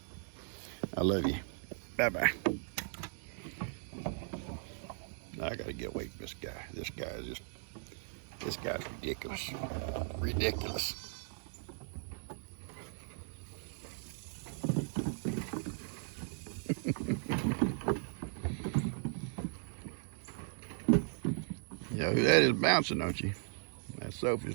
I love you. Bye-bye. I gotta get away from this guy. This guy's ridiculous. Ridiculous. You know who that is bouncing, don't you? That's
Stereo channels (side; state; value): left; silent; digital silence